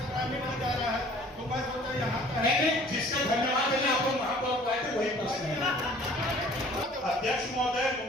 ग्रामीण में जा रहा है तो मैं सोचा यहाँ का नहीं, जिसका धन्यवाद देने आपको महापौर को आए थे वही प्रश्न है। अध्यक्ष महोदय,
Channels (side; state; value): both; normal; correlation 0.51